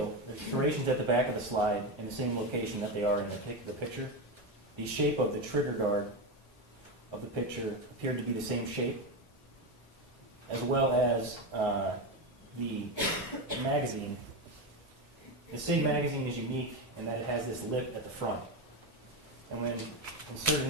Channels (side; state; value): both; normal; correlation 0.14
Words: there's serrations at the back of the slide in the same location that they are in the picture. The shape of the trigger guard of the picture appeared to be the same shape, as well as the magazine. The SIG magazine is unique in that it has this lip at the front. And when inserted